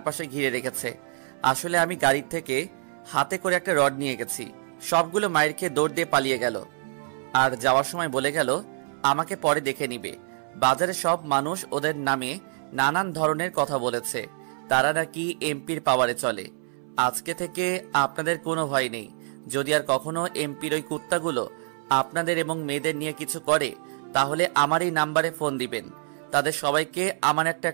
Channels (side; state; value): left; silent; 61 dB below the other